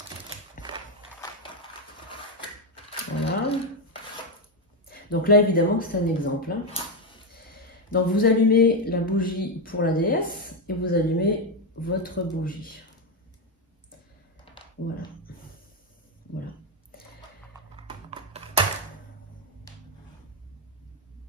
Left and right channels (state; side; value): normal; both; correlation 0.07